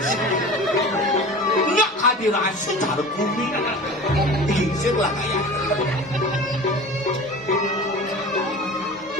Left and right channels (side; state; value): both; normal; correlation 0.37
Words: Nggak hadiran secara bumi. Digisir lah kayak.